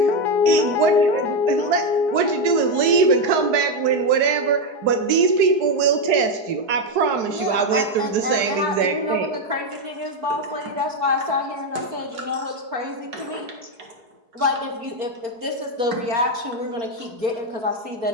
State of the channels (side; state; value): left; late; 4.7 ms